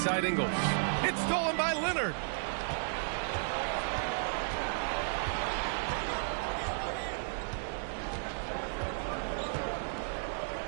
Ingles. It's stolen by Leonard.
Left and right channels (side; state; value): left; silent; digital silence